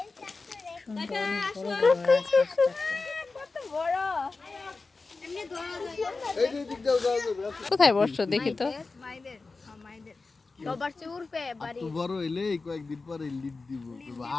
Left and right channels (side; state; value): right; quieter; 3.9 dB